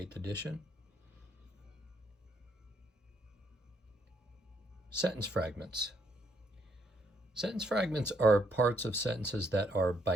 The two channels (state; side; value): normal; both; correlation 0.72